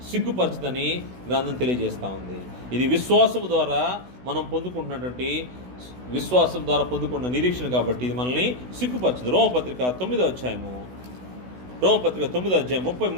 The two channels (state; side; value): late; left; 16 ms